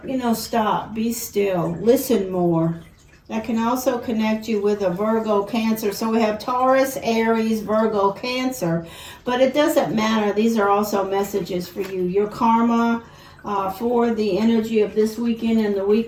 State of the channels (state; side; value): identical; both; correlation 1.00